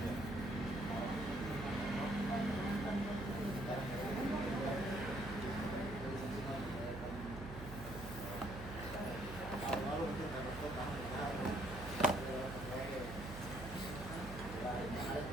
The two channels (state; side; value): noise; right; hum, 10 dB below the sound